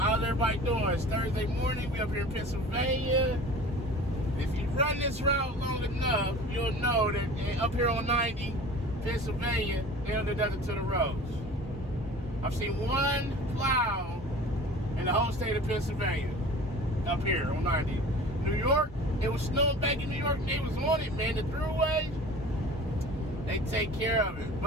everybody doing? It's Thursday morning. We up here in Pennsylvania. If you run this route long enough, you'll know that up here on 90, Pennsylvania, they don't do nothing to the roads. I've seen one plow in the whole state of Pennsylvania up here on 90. New York, it was snowing back in New York, and they was on it, man. The throughway, they take care of it.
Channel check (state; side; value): normal; both; correlation 0.41